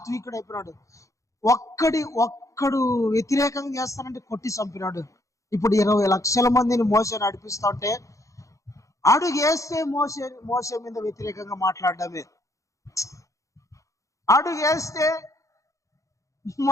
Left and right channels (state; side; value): late; right; 0.15 ms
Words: అయిపోయినాడు. ఒక్కడు వ్యతిరేకంగా చేస్తానంటే కొట్టి చంపినాడు. ఇప్పుడు 20 లక్షల మందిని మోషే నడిపిస్తా ఉంటే అడుగేస్తే మోషే మీద వ్యతిరేకంగా మాట్లాడడమే, అడుగేస్తే